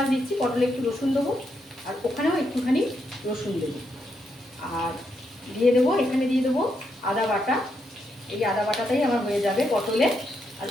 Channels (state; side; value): normal; both; correlation 0.80